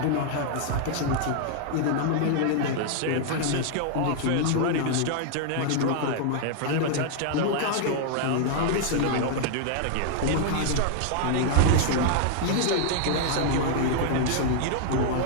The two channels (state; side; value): different; both; correlation 0.00